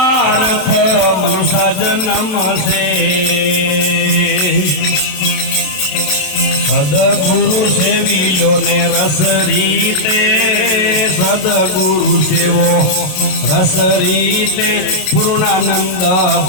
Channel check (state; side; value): late; right; 27 ms